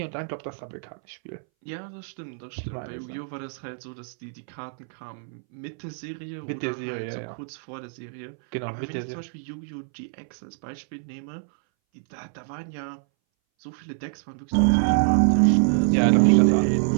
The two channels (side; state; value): left; silent; 61 dB below the other